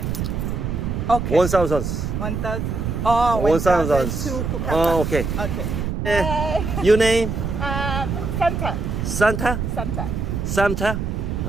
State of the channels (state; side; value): noise; right; rumble, 2 dB below the sound